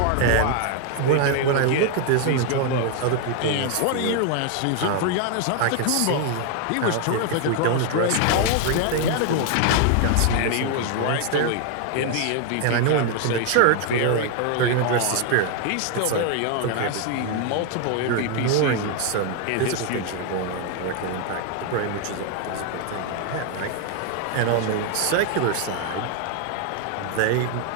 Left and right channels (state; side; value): different; both; correlation 0.00